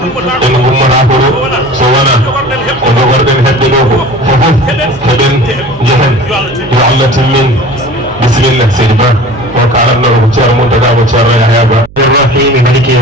gummata ko ɗo so wona ko jogorɗen heɓɓe ɗo ko fofof heɓen jehen yo Allah timmin bisimilla seydi Ba o kalatno ko ceerno Mountaga ko ceerno Yahya Ba الرحيم مالك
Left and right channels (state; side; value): noise; right; hum, 21 dB below the sound